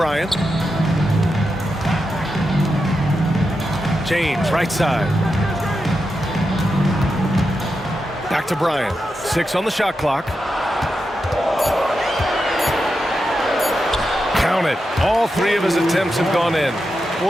James, right side. Back to Bryant. 6 on the shot clock. Count it. All three of his attempts have gone in.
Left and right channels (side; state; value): both; normal; correlation 0.88